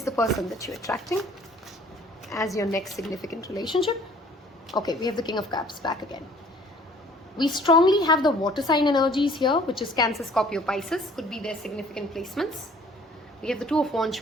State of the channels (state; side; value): normal; both; correlation 0.54